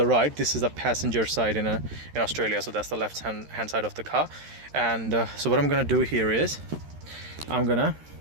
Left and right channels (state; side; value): late; left; 13 ms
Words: right. This is the passenger side in Australia, so that's the left hand side of the car. And so what I'm gonna do here is I'm gonna